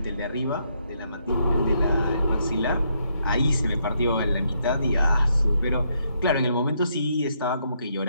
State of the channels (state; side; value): inverted; both; correlation -0.75